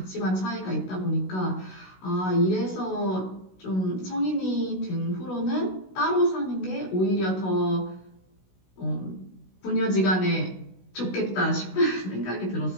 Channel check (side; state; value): right; late; 16 ms